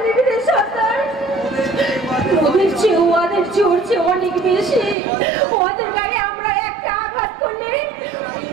অনেক বেশি। ওদের গায়ে আমরা একটা আঘাত করলে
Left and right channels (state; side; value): drops out; left; at 5.0 s